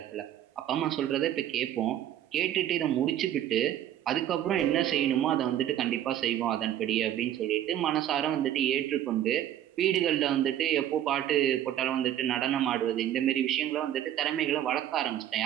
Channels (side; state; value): left; quieter; 11.5 dB